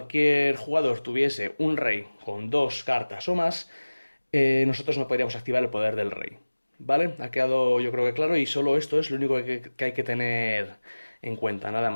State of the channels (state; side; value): inverted; both; correlation -1.00